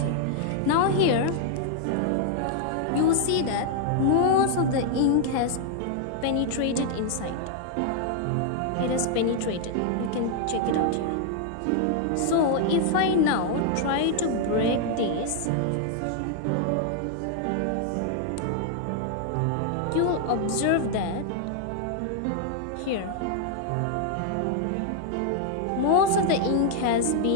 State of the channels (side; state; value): both; different; correlation 0.00